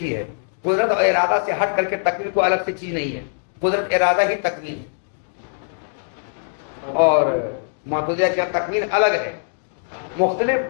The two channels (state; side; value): silent; right; digital silence